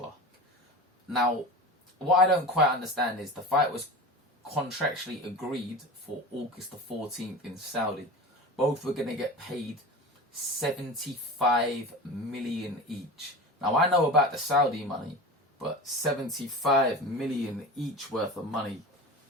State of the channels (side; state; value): both; normal; correlation 0.31